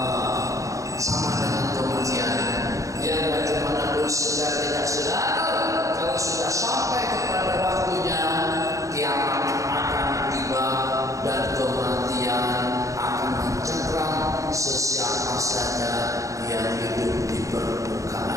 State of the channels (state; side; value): late; left; 0.16 ms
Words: sama dengan kematian. Yang bagaimanapun sedar tidak sedar, kalau sudah sampai kepada waktunya, kiamat akan tiba dan kematian akan mencengkram sesiapa saja yang hidup di